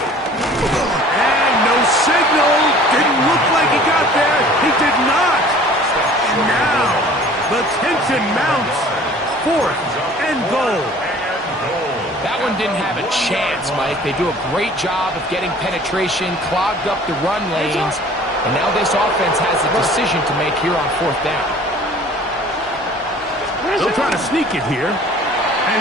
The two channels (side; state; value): both; normal; correlation 0.49